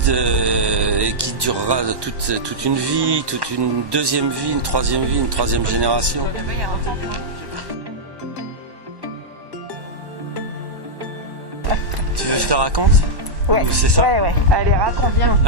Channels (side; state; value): left; late; 1.1 ms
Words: et qui durera toute une vie, toute une deuxième vie, une troisième génération. Là-bas, il y a un temple. Tu veux que je te raconte? Ouais. Ou c'est ça? Ouais. Allez, raconte bien.